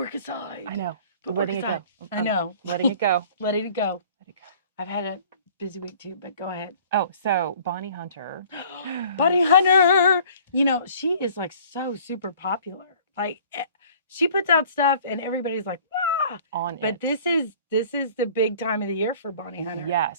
aside. I know, Put letting work it aside. go. I know. Letting it go. Letting it go. Let it go. I've had a busy week too, but go ahead. Oh, so Bonnie Hunter. Bonnie Hunter, she is like so super popular. Like she puts out stuff and everybody's like, ah! On But it. this is the big time of the year for Bonnie Hunter.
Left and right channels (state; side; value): inverted; both; correlation -0.51